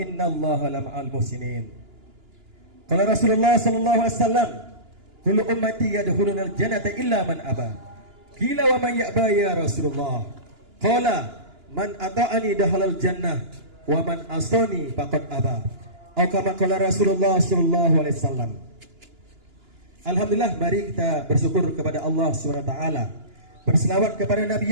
lama'al muhsinin. Qala Rasulullah sallallahu alaihi wasallam, kullu ummati yadkhulunal jannata illa man aba. Qila wa man ya'ba ya Rasulullah? Qala man ata'ani dakhalal jannah wa man asani faqad aba. Atau kama qala Rasulullah sallallahu alaihi wasallam. Alhamdulillah, mari kita bersyukur kepada Allah Subhanahu wa taala. Berselawat kepada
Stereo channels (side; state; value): left; late; 2.9 ms